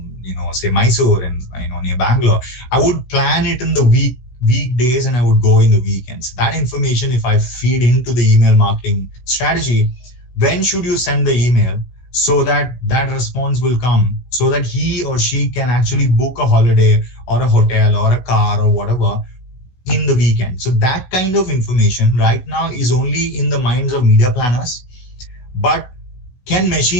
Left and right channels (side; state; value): right; late; 16 ms